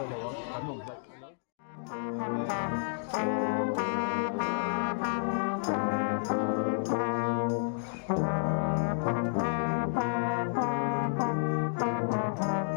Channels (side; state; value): right; silent; digital silence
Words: là bắn mồm vậy.